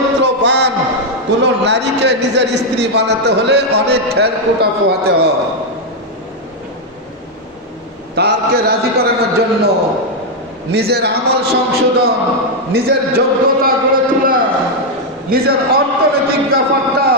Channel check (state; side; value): normal; both; correlation 0.00